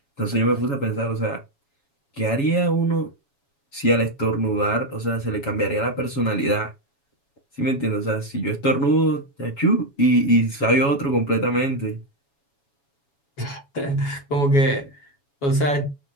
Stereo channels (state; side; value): late; right; 7.2 ms